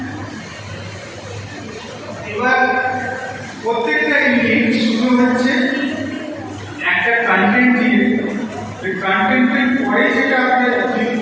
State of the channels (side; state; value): both; identical; correlation 1.00